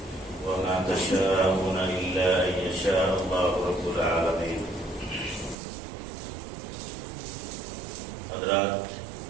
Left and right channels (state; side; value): drops out; left; at 5.6 s